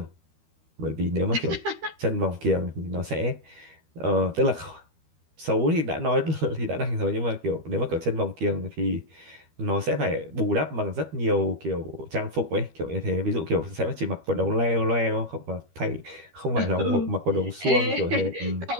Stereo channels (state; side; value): late; left; 13 ms